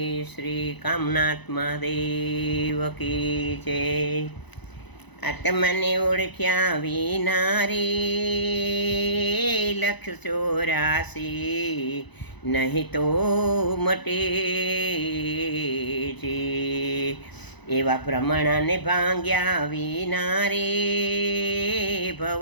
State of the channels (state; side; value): late; right; 1.0 ms